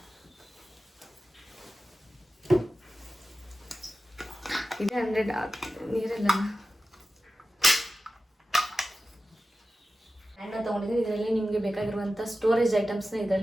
ಇದೆ 100 ನೀರೆಲ್ಲ ಹ್ಯಾಂಡ್ನ ತೊಗೊಂಡಿದ್ದೀನಿ. ಇದರಲ್ಲಿ ನಿಮಗೆ ಬೇಕಾಗಿರುವಂಥ ಸ್ಟೋರೇಜ್ ಐಟಮ್ಸ್ನ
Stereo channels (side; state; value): both; normal; correlation 0.94